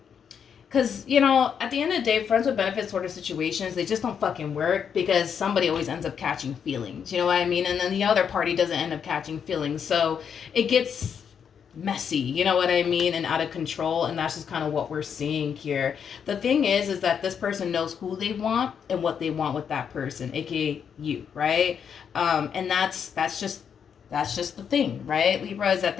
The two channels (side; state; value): right; quieter; 7.4 dB